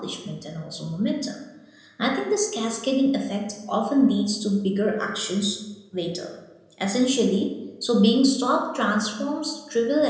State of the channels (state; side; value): identical; both; correlation 1.00